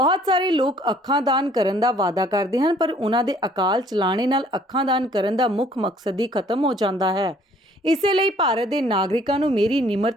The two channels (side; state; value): both; normal; correlation 0.59